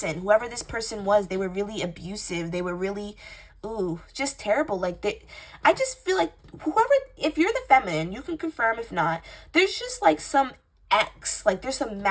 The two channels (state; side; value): identical; both; correlation 1.00